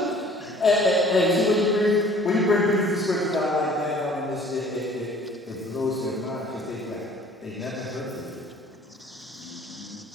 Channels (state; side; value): normal; both; correlation 0.52